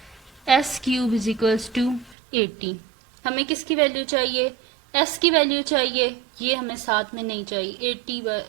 s cube is equals to 80। हमें किसकी वैल्यू चाहिए, एस की वैल्यू चाहिए, ये हमें साथ में नहीं चाहिए,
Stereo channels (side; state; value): left; drops out; at 2.1 s